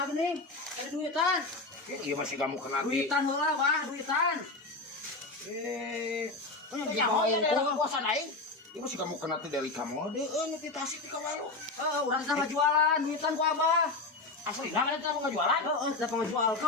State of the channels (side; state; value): right; quieter; 3.4 dB